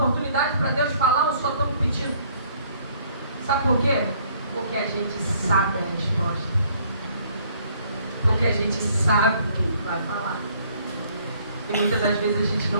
para Deus falar ou só estamos pedindo? Sabe por quê? Porque a gente sabe a resposta. Porque a gente sabe o que Ele vai falar. E muitas das vezes a gente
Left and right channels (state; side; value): inverted; both; correlation -0.62